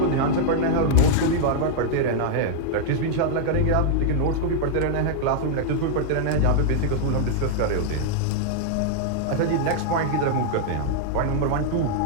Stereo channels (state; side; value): different; both; correlation -0.01